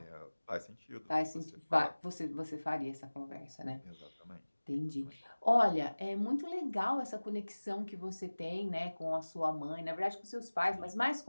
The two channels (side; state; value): both; inverted; correlation -1.00